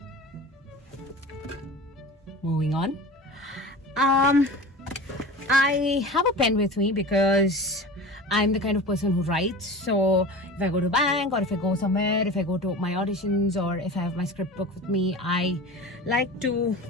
Moving on, I have a pen with me because I'm the kind of person who writes. So if I go to bank, or if I go somewhere, if I go to my auditions, or if I have my script book with me, I like to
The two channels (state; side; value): normal; both; correlation 0.34